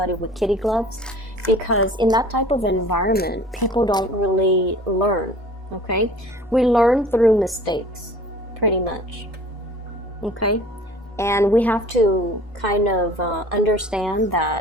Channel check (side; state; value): both; normal; correlation 0.47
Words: with kitty gloves. Because in that type of environment, people don't really learn, okay? We learn through mistakes, pretty much, okay? And we have to kind of understand